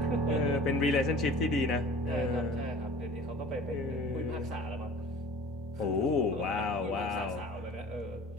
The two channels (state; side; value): normal; both; correlation 0.44